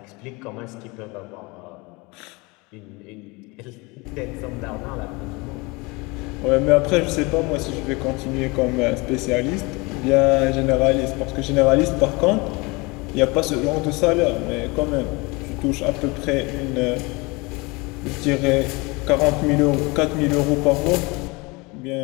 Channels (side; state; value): right; quieter; 25.9 dB